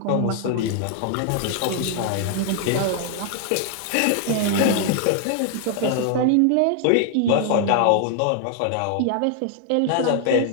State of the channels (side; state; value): both; different; correlation 0.00